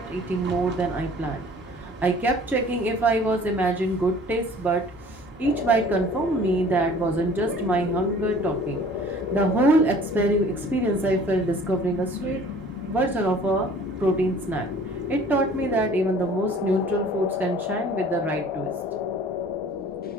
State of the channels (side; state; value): both; normal; correlation 0.50